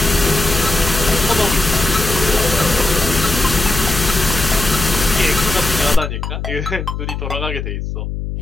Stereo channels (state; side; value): noise; left; hum, 5 dB below the sound